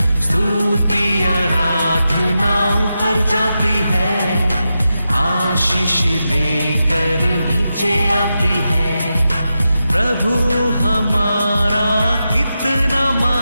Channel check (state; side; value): inverted; both; correlation -0.89